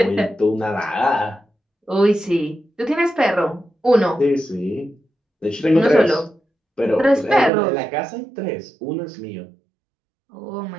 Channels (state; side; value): drops out; left; at 7.5 s